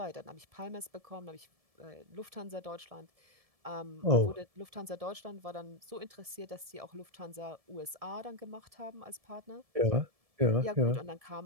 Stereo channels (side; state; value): left; late; 1.7 ms